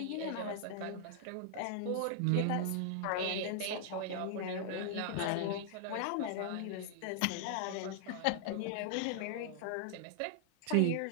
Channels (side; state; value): both; different; correlation -0.01